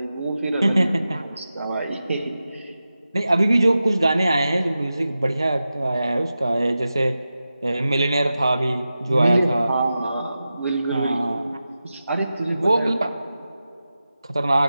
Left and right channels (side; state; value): both; inverted; correlation -0.93